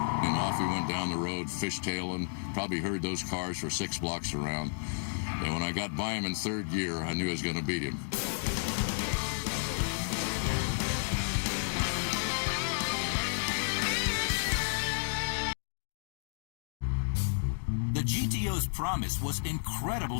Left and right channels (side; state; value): right; silent; digital silence